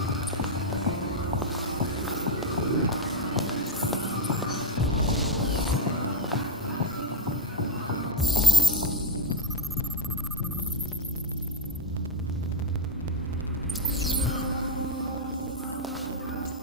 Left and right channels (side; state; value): both; normal; correlation 0.05